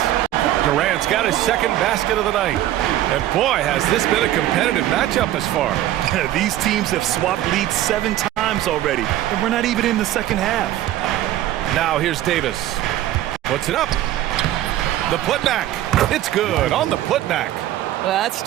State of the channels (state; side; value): quieter; left; 13.5 dB